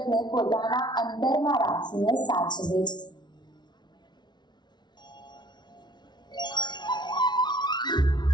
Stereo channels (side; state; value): right; late; 0.20 ms